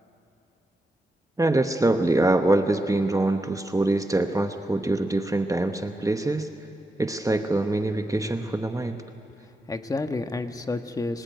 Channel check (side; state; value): both; normal; correlation 0.86